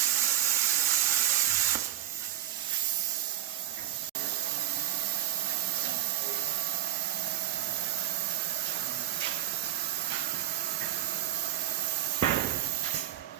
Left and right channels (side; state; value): left; quieter; 13.2 dB